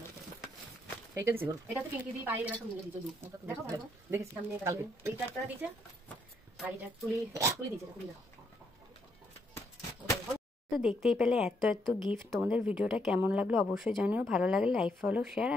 এইটা দিছি গো। এটা তো পিঙ্কি দিয়ে পায়ে এরা সব মিলে দিত। দেখো ভালো। দেখেছি সামনে কালকে। এইটা একটা দিয়েছে আর এটা তুলি দিয়েছে, তুলি দাও। তো দেখতেই পেলে এত এত গিফট। তোমাদের ভিডিওটা কেমন লাগলো অবশ্যই জানিও। ভালো লাগলে like, follow, share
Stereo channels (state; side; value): normal; both; correlation 0.74